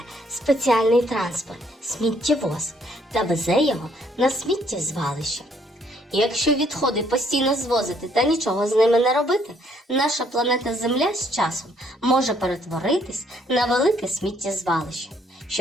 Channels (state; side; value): normal; both; correlation 0.67